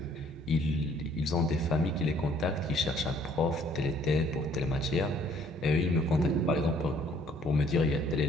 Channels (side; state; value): both; normal; correlation 0.61